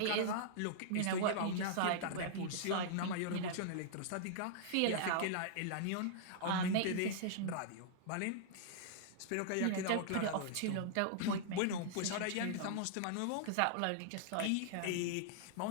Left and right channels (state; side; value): different; both; correlation -0.01